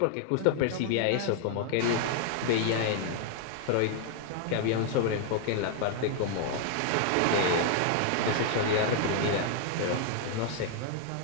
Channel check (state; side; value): different; both; correlation 0.00